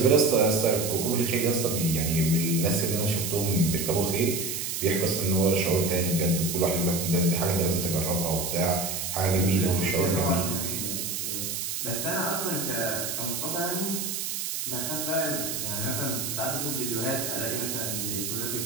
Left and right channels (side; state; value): right; noise; hiss, 3 dB below the sound